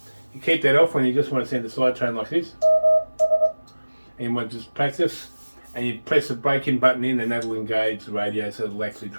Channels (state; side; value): inverted; both; correlation -1.00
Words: You keep that off when you just want to send a side train like this, and you want to just practice, and you press the break-in button in, and that'll engage the radio so it'll actually